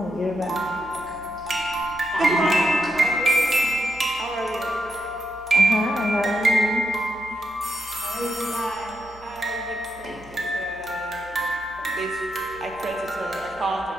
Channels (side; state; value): both; normal; correlation 0.83